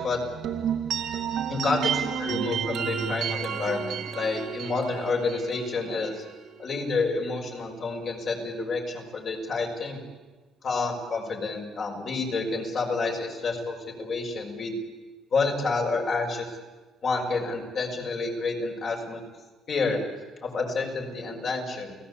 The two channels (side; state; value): both; normal; correlation 0.74